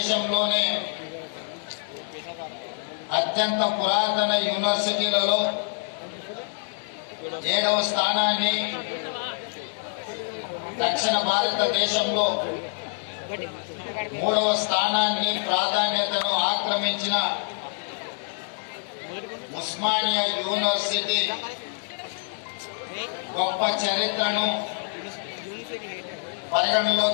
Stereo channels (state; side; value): silent; right; 61 dB below the other